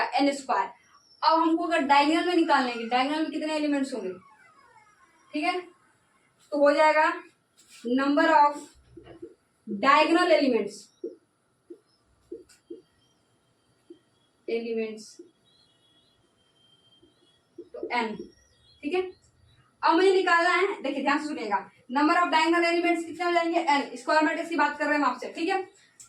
एन स्क्वायर। अब हमको अगर डायगोनल में निकालेंगे, डायगोनल में कितने एलिमेंट्स होंगे, ठीक है, तो हो जाएगा नंबर ऑफ डायगोनल एलिमेंट्स तो एन, ठीक है। अब मुझे निकालना है, देखिए ध्यान से सुनिएगा, नंबर ऑफ डायगोनल एलिमेंट्स कितने हो जाएंगे, एन। स्क्वायर मैट्रिक्स की बात कर रहे हैं हम आपसे, ठीक है।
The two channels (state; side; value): identical; both; correlation 1.00